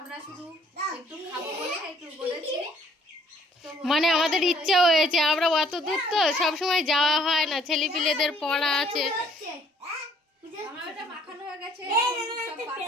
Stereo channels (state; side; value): normal; both; correlation 0.61